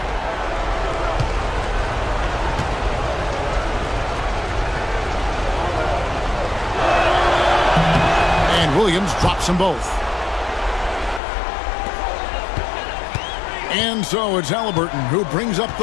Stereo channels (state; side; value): drops out; right; at 11.2 s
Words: And Williams drops them both. And so it's Halliburton who brings up